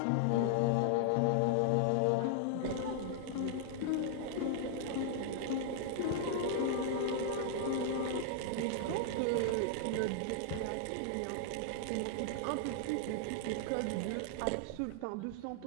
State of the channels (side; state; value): both; different; correlation -0.01